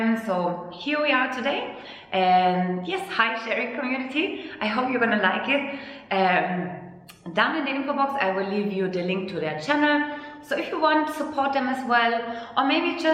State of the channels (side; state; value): both; identical; correlation 1.00